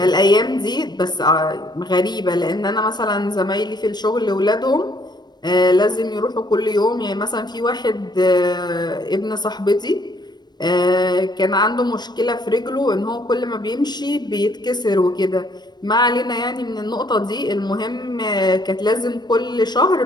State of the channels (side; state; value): right; late; 0.20 ms